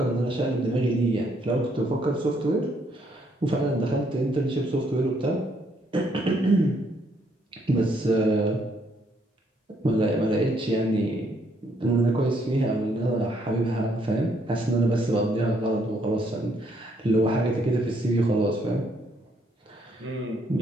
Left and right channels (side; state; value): both; normal; correlation 0.70